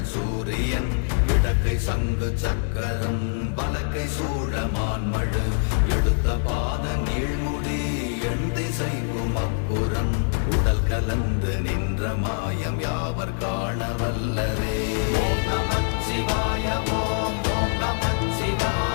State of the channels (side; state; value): right; silent; digital silence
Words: சூரியன் இடக்கை சங்கு சக்கரம் வலக்கை சூழமான்மழு எடுத்த பாத நீழ்முடி எண் திசைக்கும் அப்புறம் உடல் கலந்து நின்ற மாயம் யாவர் காண வல்லரே. ஓம் நமச்சிவாய ஓம் ஓம்